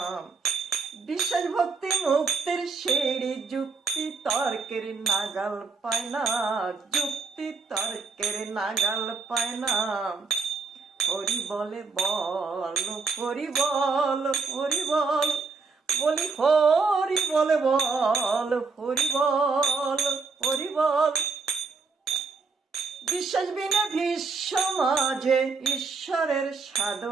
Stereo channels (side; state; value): left; quieter; 4.5 dB